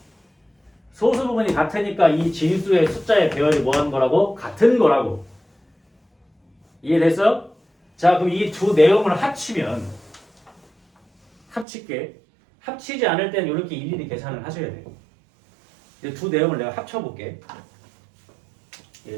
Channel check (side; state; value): left; drops out; at 11.7 s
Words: 소수 부분이 같으니까 이 진수의 숫자의 배열이 뭐 하는 거라고? 같은 거라고. 이해됐어? 자, 그럼 이 두 내용을 합치면 합칠게. 합치지 않을 때는 이렇게 일일이 계산을 하셔야 돼요. 이 두 내용을 내가 합쳐볼게.